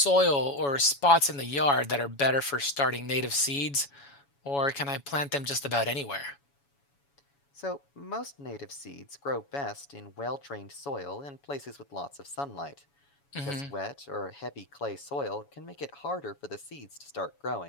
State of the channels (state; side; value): late; right; 7.1 ms